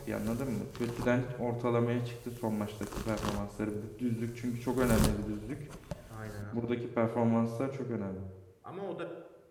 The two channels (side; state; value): both; identical; correlation 1.00